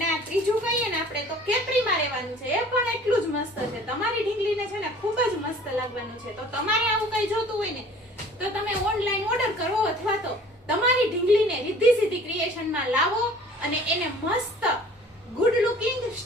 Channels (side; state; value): both; normal; correlation 0.49